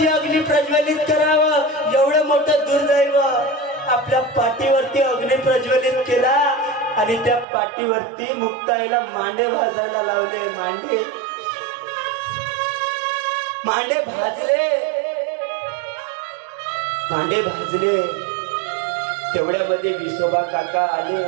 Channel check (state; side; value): drops out; left; at 7.5 s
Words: अग्नी प्रज्वलित करावं एवढं मोठं दुर्दैव. आपल्या पाठीवरती अग्नी प्रज्वलित केला आणि त्या पाठीवरती मुक्ताईला मांडे भाजायला लावले. मांडे भाजले. तेवढ्यामध्ये विसोबा काका आले.